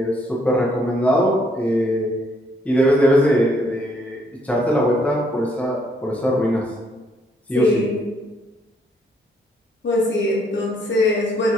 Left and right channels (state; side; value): normal; both; correlation 0.69